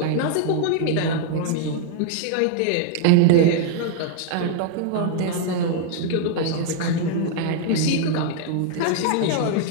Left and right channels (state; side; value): different; both; correlation 0.00